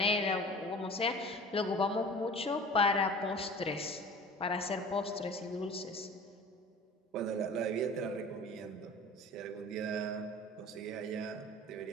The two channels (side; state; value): both; normal; correlation 0.41